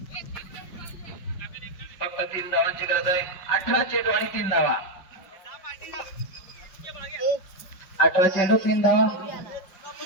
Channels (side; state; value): right; late; 5.3 ms